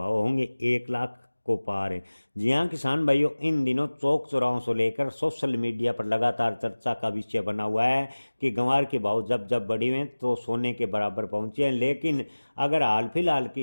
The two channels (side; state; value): both; inverted; correlation -1.00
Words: होंगे 1 लाख को पार? जी हाँ किसान भाइयों, इन दिनों चौक चौराहों से लेकर सोशल मीडिया पर लगातार चर्चा का विषय बना हुआ है कि गंवार के भाव जब जब बढ़े हुए तो सोने के बराबर पहुंचे हैं। लेकिन अगर हाल फिलहाल